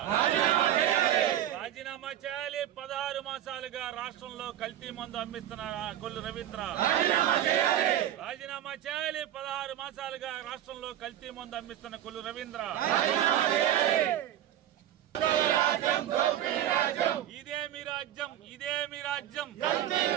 రాజీనామా చేయాలి. 16 మాసాలుగా రాష్ట్రంలో కల్తీ మందు అమ్మిస్తున్న కొల్లు రవీంద్ర రాజీనామా చేయాలి. 16 మాసాలుగా రాష్ట్రంలో కల్తీ మందు అమ్మిస్తున్న కొల్లు రవీంద్ర ఇదే మీ రాజ్యం ఇదే మీ రాజ్యం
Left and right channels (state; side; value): quieter; left; 11.7 dB